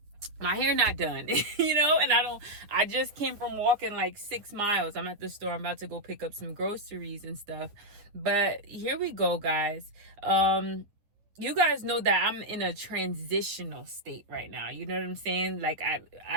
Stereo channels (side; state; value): left; late; 9.6 ms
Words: my hair not done, and I just came from walking like 6 miles. I'm at the store. I'm about to go pick up some groceries and stuff. But here we go, guys. You guys know that I'm in a transitional state right now. You know what I'm saying? Like